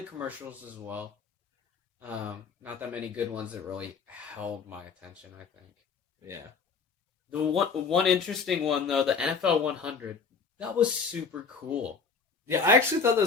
the commercials as well. Not that many good ones that really held my attention, I think. Yeah. The one interesting one though, the NFL 100, that was super cool. Yeah, I actually thought that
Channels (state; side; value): quieter; right; 5.3 dB